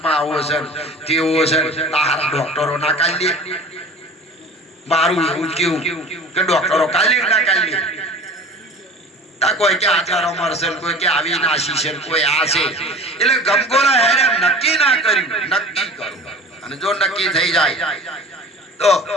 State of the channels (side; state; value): both; normal; correlation 0.40